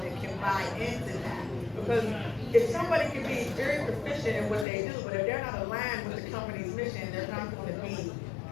and can buy into that. Because if somebody can be very proficient in what they do, but if they're not aligned with the company's mission, they're not going to be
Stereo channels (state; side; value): drops out; right; at 4.7 s